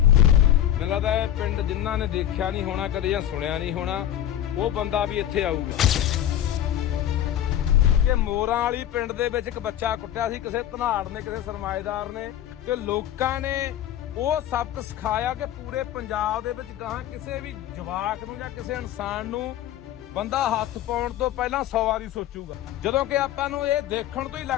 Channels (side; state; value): right; quieter; 11.5 dB